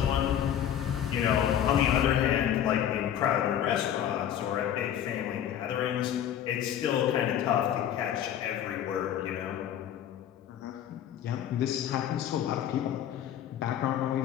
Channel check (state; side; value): quieter; right; 10.2 dB